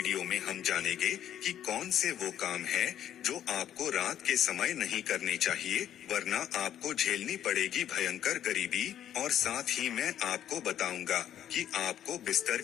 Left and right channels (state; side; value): quieter; right; 10.8 dB